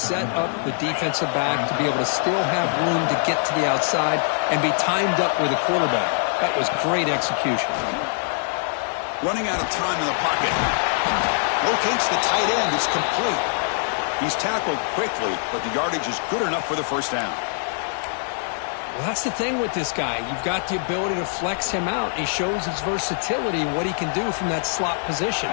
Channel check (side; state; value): right; silent; digital silence